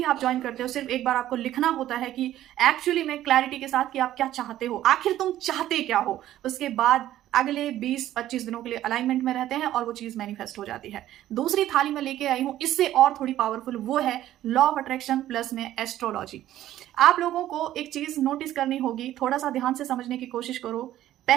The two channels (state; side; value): quieter; left; 13.2 dB